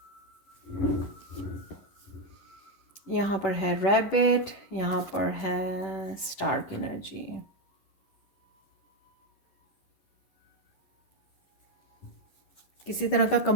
यहाँ पर है रैबिट, यहाँ पर है स्टार की एनर्जी। किसी तरह का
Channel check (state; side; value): late; right; 10 ms